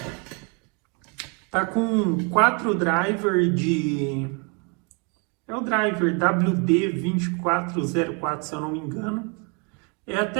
está com 4 drivers é o driver WD2404 se eu não me engano, é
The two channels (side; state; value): left; quieter; 33.4 dB